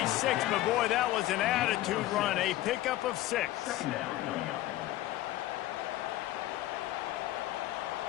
but boy, that was an attitude run. A pickup of 6. 2nd down coming up.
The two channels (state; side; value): quieter; right; 15.4 dB